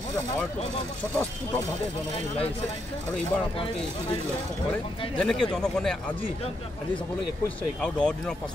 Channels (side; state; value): both; normal; correlation 0.79